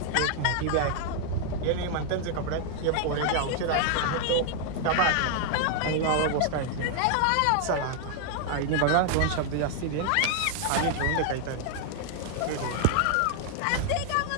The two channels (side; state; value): both; different; correlation 0.00